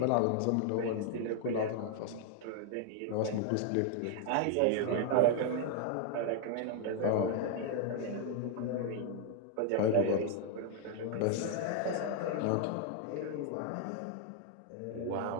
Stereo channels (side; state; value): both; different; correlation 0.00